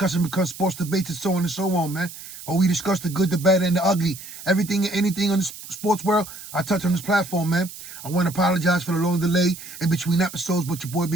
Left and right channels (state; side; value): noise; right; hiss, 14 dB below the sound